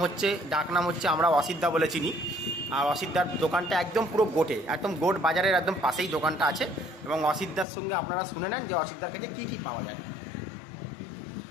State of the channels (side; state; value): right; drops out; at 7.7 s